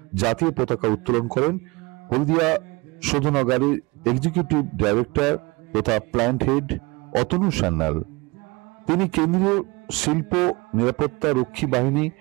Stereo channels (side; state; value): left; quieter; 24.7 dB